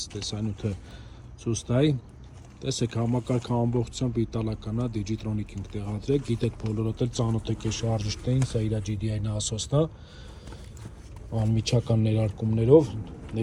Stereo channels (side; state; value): both; identical; correlation 1.00